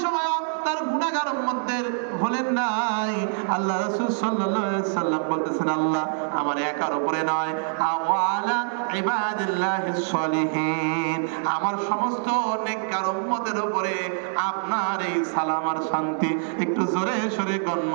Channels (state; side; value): silent; left; digital silence